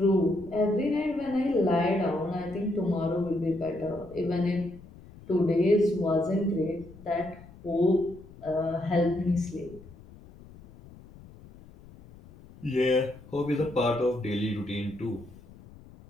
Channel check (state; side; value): noise; left; rumble, 20 dB below the sound